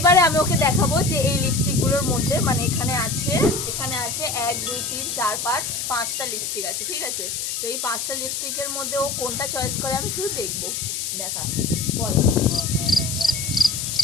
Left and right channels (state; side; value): noise; left; hiss, 3 dB below the sound